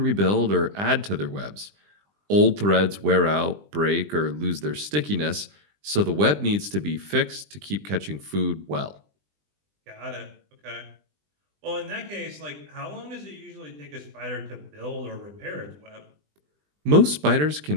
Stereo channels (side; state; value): left; late; 20 ms